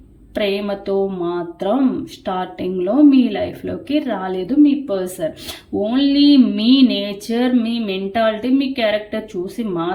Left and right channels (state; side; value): identical; both; correlation 1.00